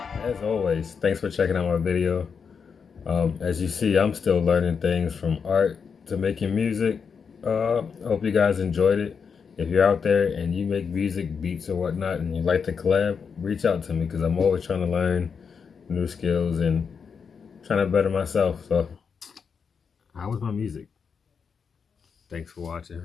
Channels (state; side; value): quieter; right; 6.1 dB